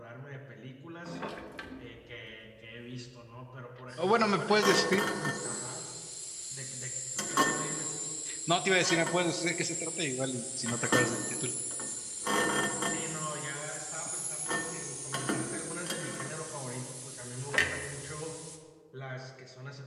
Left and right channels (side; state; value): both; identical; correlation 1.00